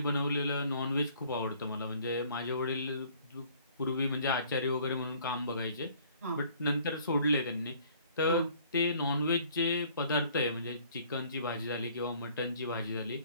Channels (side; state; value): both; inverted; correlation -0.57